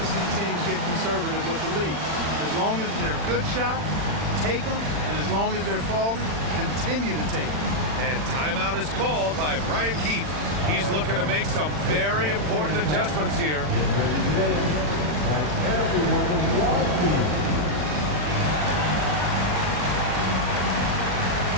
see teams get conservative with the lead. As long as they're good shots, take them, and as long as they're falling, continue to take them. And timeout is called by Brian Keefe. He's looking to make some very important adjustments here. Get ready today. Like everyone walking.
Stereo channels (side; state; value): left; late; 40 ms